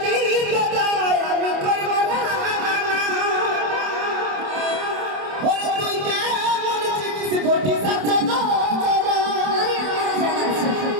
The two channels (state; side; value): late; left; 27 ms